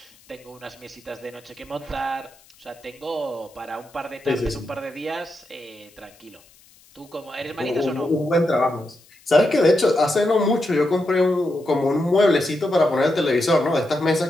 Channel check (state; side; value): noise; left; hiss, 28 dB below the sound